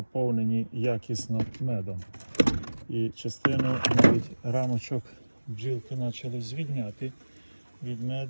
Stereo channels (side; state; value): both; inverted; correlation -1.00